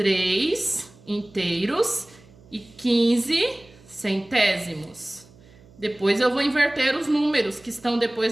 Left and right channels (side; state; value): right; noise; hum, 26 dB below the sound